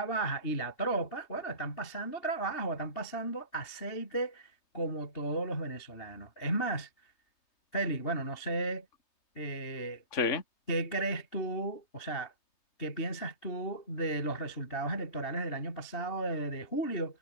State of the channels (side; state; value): right; late; 3.3 ms